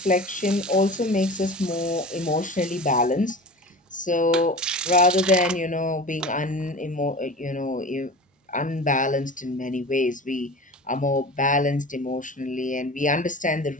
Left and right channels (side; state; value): both; normal; correlation 0.35